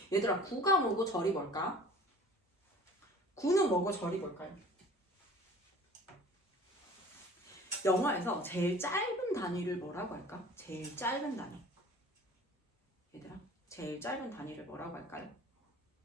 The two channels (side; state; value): both; normal; correlation 0.46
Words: 얘들아 구가 뭐고 절이 뭘까? 구는 뭐고 절이 뭘까요? 영어에서 제일 짧은 단위를 뭐라고 할까? 제일 짧은 단위. 얘들아 제일 짧은 단위를 뭐라고 할까요?